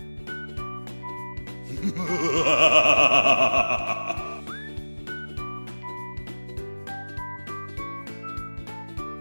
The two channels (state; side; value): inverted; both; correlation -1.00